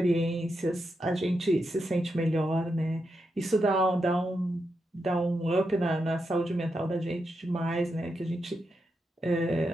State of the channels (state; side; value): normal; both; correlation 0.85